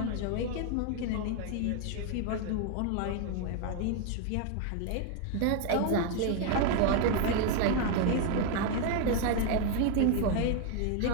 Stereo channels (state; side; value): different; both; correlation 0.01